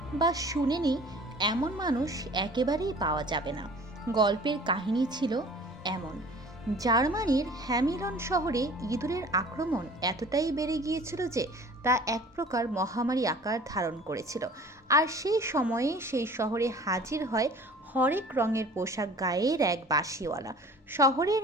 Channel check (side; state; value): both; normal; correlation 0.46